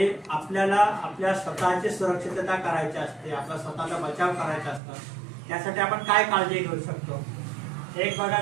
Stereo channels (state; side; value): drops out; left; at 4.8 s